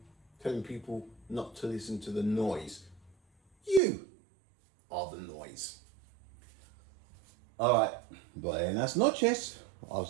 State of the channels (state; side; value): drops out; left; at 3.8 s